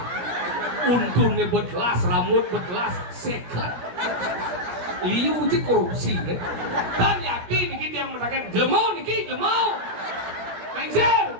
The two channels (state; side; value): late; left; 17 ms